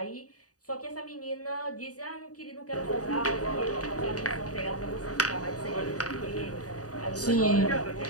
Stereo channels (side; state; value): right; late; 0.67 ms